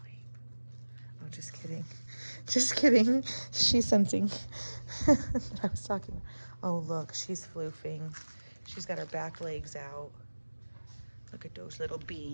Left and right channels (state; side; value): inverted; both; correlation -1.00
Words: Oh, just kidding. Just kidding. She's sensing that I was talking. Oh, look, she's floofing. She's got her back legs out. Look at those little